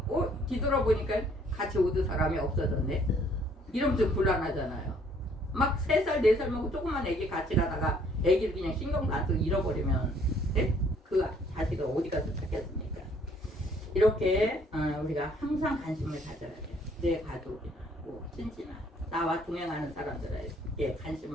뒤돌아보니까 같이 오던 사람이 없어졌네. 이러면 좀 곤란하잖아요. 막 3살, 4살 먹고 조그만 애기 같이 가다가 애기를 그냥 신경도 안 쓰고 잃어버리면 그 자식을 어디 가서 찾겠습니까? 이렇게 우리가 항상 관심을 가져야 돼요. 내 가족이나 뭐 친지나 나와 동행하는 사람들에게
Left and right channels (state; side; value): normal; both; correlation 0.62